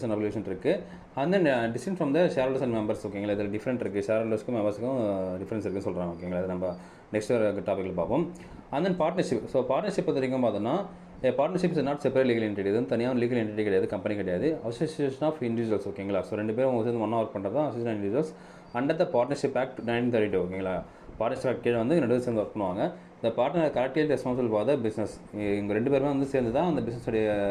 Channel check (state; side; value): identical; both; correlation 1.00